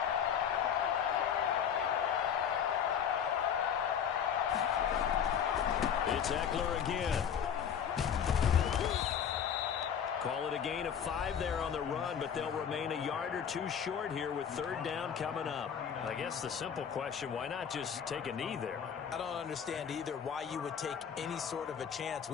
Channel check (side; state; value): right; quieter; 8.0 dB